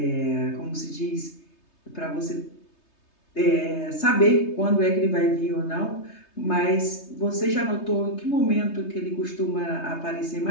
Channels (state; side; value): late; right; 3.3 ms